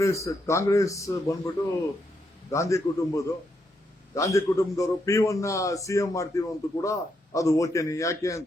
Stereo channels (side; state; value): both; normal; correlation 0.79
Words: ಬಂದ್ಬಿಟ್ಟು ಗಾಂಧಿ ಕುಟುಂಬದವರು P1 ಸಿಎಂ ಮಾಡ್ತೀವಿ ಅಂತ ಕೂಡ ಅದು ಓಕೆನಿ. ಯಾಕೆ